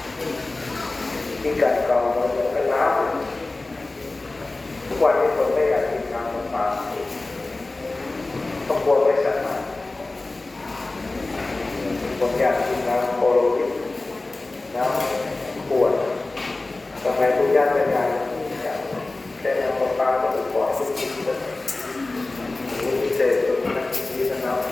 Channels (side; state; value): right; quieter; 3.1 dB